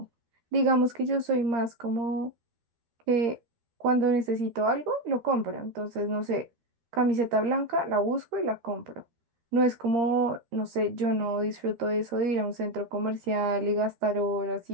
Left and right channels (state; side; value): late; left; 13 ms